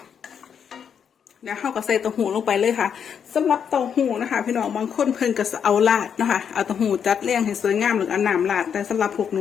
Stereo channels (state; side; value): quieter; right; 7.6 dB